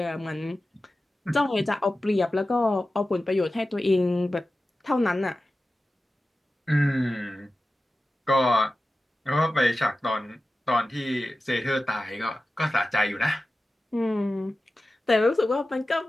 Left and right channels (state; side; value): normal; both; correlation 0.94